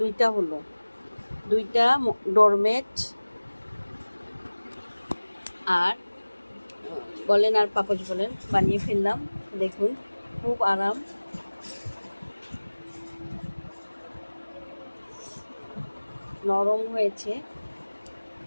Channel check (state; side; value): inverted; both; correlation -1.00